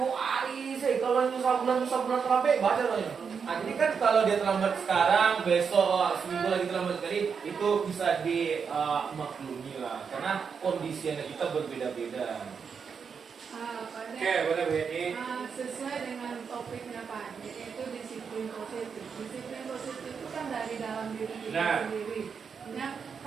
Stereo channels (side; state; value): left; quieter; 6.2 dB